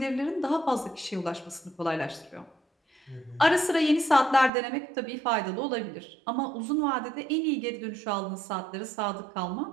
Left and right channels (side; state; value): left; drops out; at 4.5 s